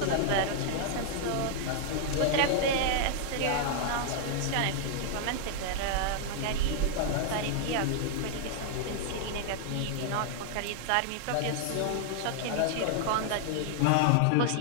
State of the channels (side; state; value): both; different; correlation 0.00